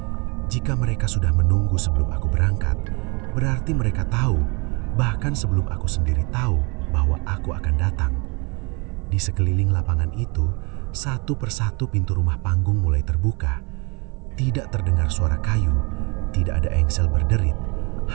Jika mereka sudah menunggu sebelum aku berangkat, berarti mereka tahu, bahkan sebelum aku sendiri tahu bahwa aku akan datang. Di sekeliling lapangan itu, satu persatu pintu rumah panggung mulai terbuka. Tidak terdengar suara kayu, tidak ada engsel berderit,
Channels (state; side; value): quieter; left; 30.7 dB